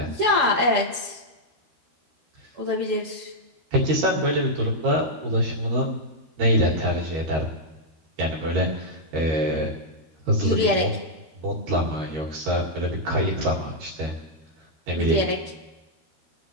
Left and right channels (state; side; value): late; left; 13 ms